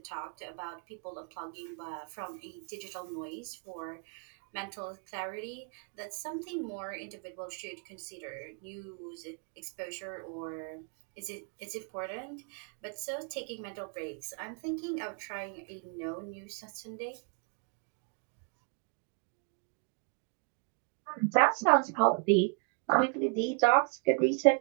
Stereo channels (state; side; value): quieter; left; 35.3 dB